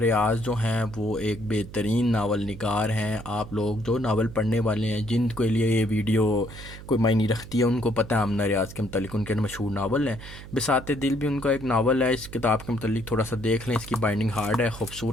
جو ہیں وہ ایک بہترین ناول نگار ہیں۔ آپ لوگ جو ناول پڑھنے والے ہیں، جن کے لیے یہ ویڈیو کوئی معنی رکھتی ہے، ان کو پتہ ہے آمنہ ریاض کے متعلق ان کے مشہور ناول ہیں۔ بساط دل بھی ان کا ایک ناول ہے۔ اس کتاب کے متعلق تھوڑا سا دیکھ لیں۔ اس کی بائنڈنگ ہارڈ ہے،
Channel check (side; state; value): right; noise; hum, 14 dB below the sound